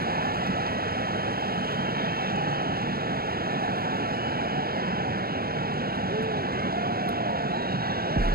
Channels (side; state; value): left; late; 0.44 ms